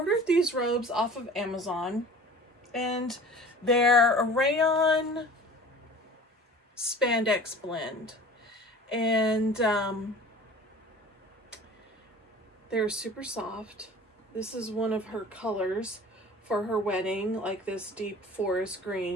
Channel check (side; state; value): both; normal; correlation 0.43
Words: these robes off of Amazon, and they're a rayon spandex blend, and they're super soft. This is one of her colors for her wedding, like this deep forest